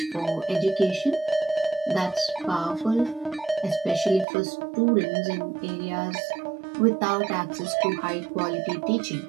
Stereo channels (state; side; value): drops out; left; at 4.2 s